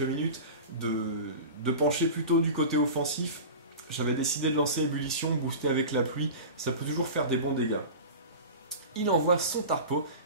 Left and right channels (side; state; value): both; inverted; correlation -0.32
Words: de pencher plutôt du côté offensif, j'avais décidé de lancer Ébullition, booster avec la pluie, ça peut toujours faire des bons dégâts. Il envoie son Tarpo.